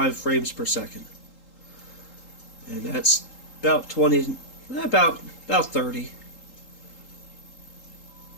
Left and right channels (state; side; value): late; right; 3.8 ms